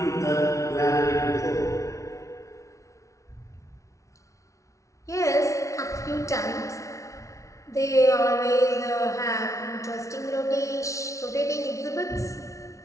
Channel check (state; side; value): late; right; 0.15 ms